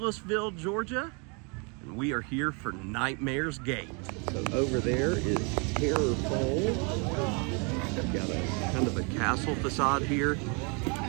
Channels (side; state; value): left; quieter; 33.8 dB